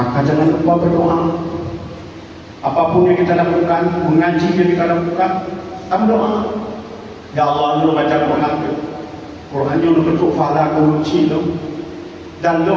jangan lupa berdoa. Apapun yang kita lakukan, mengaji yang kita lakukan, berdoa. Ya Allah, lu baca Quran, Quran lu bentuk fala kunci lu, dan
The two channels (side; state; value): both; identical; correlation 1.00